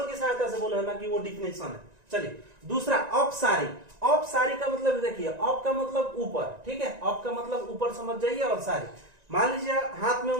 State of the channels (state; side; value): late; left; 1.9 ms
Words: की सहायता से बोला है ना कि वो डिफिनेशन है। चलिए दूसरा, औपसारी। औपसारी का मतलब देखिए, औप का मतलब ऊपर, ठीक है, औप का मतलब ऊपर समझ जाइए, और सारी, मान लीजिए हाथ में